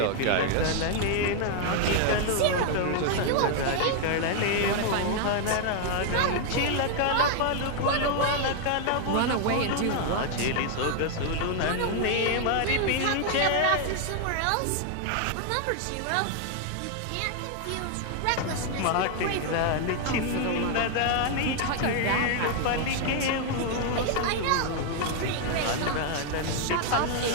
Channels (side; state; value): both; different; correlation 0.00